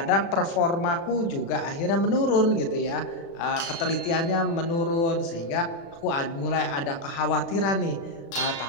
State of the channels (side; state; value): right; late; 36 ms